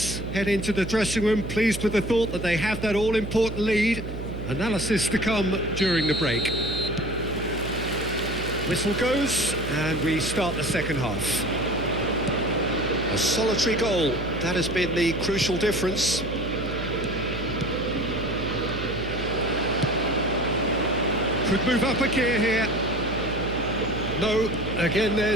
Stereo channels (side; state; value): right; noise; hum, 8 dB below the sound